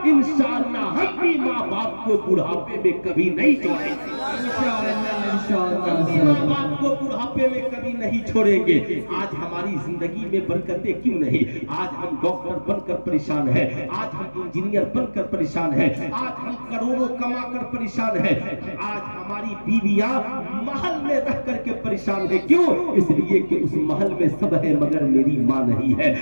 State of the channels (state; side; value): inverted; both; correlation -1.00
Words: इंशाअल्लाह हम भी माँ बाप को बुढ़ापे में कभी नहीं छोड़ेंगे, माँ बाप को बुढ़ापे में कभी नहीं छोड़ेंगे। आज हमारी जिंदगी में बरकतें क्यों नहीं? आज हम डॉक्टर बनकर परेशान है, आज हम इंजीनियर बनकर परेशान है, आज हम करोड़ों कमा कर परेशान है, आज हमारी बीवियां महल में रह करके परेशान है। क्यों? इसलिए कि उस महल में सब है मगर मेरी माँ नहीं है।